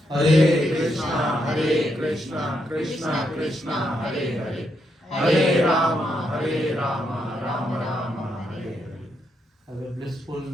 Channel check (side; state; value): both; normal; correlation 0.79